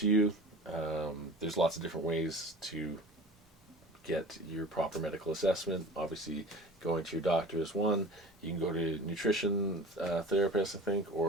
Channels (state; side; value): normal; both; correlation 0.39